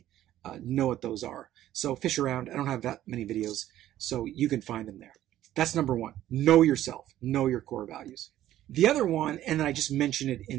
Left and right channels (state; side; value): quieter; left; 13.1 dB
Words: know what those are. So fish around. I don't have that many videos, so you can find them there. That's number one. Know yourself. Know your core values. The other one, and I just mentioned it